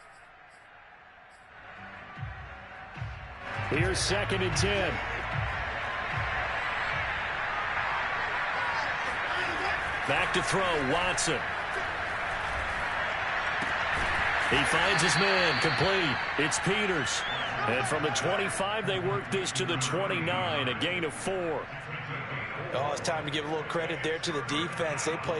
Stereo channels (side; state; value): both; identical; correlation 1.00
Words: Here's 2nd and 10. Back to throw, Watson. He finds his man, complete. It's Peters. And from the 25, they work this to the 29, a gain of 4. Oh, it's time to give a little credit there to the defense. They